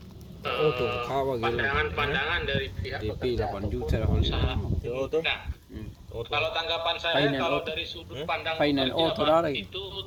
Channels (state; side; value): identical; both; correlation 1.00